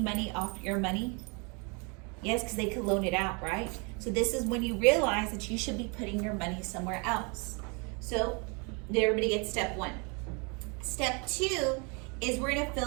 money off your money? Yes, because they could loan it out, right? So this is when you realize that you should be putting your money somewhere else. So everybody gets step one. Step two is we're gonna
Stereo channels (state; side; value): quieter; left; 33.0 dB